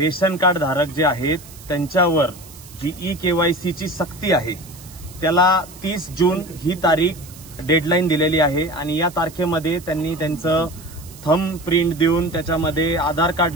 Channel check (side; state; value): right; noise; hiss, 19 dB below the sound